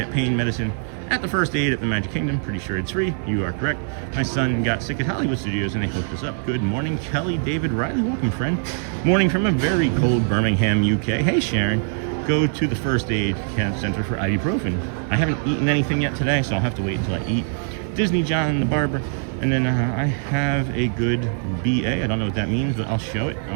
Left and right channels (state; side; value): silent; left; 64 dB below the other